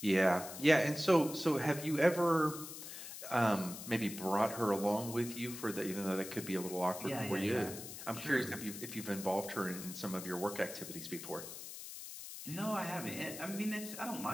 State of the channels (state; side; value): noise; left; hiss, 10 dB below the sound